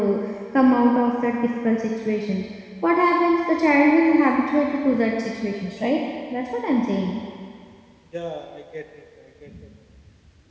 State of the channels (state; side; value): identical; both; correlation 1.00